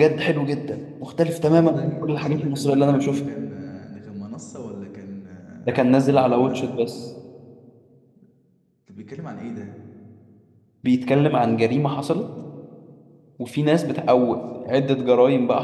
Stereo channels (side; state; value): both; identical; correlation 1.00